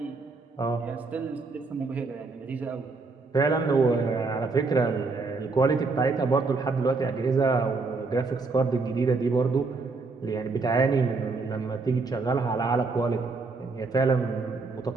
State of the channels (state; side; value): quieter; left; 4.0 dB